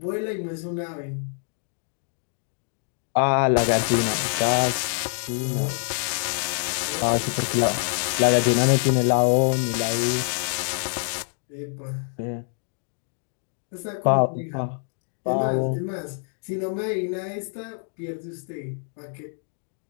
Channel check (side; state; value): right; silent; digital silence